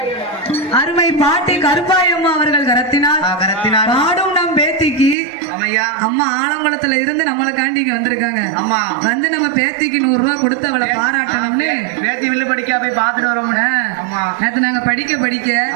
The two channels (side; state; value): left; drops out; at 5.2 s